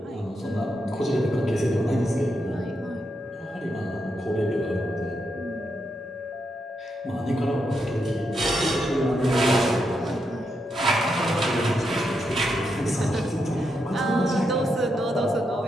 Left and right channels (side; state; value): both; normal; correlation 0.83